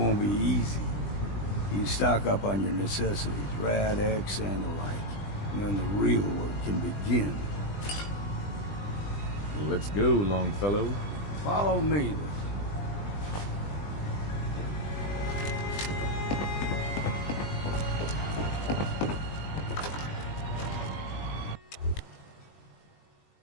be easy. You stock up on your necessities, Rad X and the like, and then the real work can begin. Let's go, Longfellow. Follow me, then.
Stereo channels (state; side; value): late; right; 20 ms